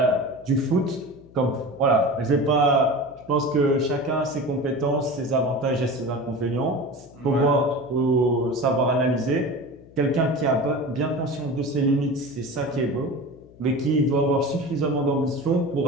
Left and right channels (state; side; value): noise; left; hum, 24 dB below the sound